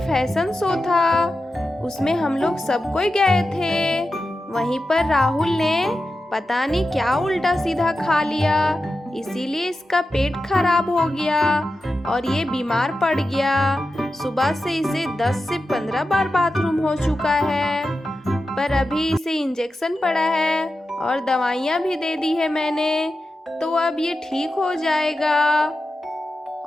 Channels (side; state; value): both; normal; correlation 0.91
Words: शो था, उसमें हम लोग सब कोई गए थे। वहीं पर राहुल ने पता नहीं क्या उल्टा सीधा खा लिया, इसीलिए इसका पेट खराब हो गया और ये बीमार पड़ गया। सुबह से इसे 10 से 15 बार बाथरूम हो चुका है, पर अभी इसे इंजेक्शन पड़ा है और दवाइयाँ भी दे दी है मैंने, तो अब ये ठीक हो जाएगा।